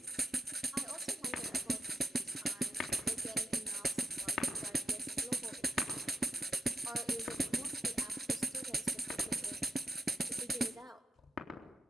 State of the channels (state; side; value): normal; both; correlation 0.82